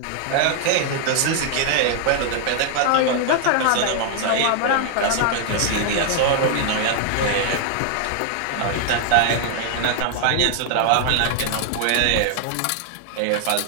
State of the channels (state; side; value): different; both; correlation 0.00